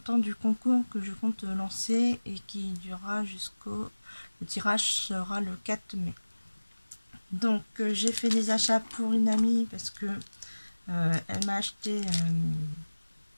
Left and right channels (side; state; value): both; inverted; correlation -1.00